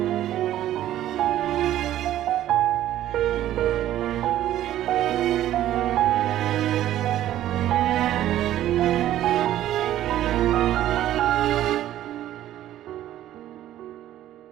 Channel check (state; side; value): quieter; left; 12.9 dB